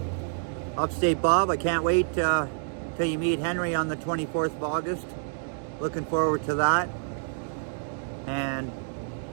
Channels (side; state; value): left; silent; digital silence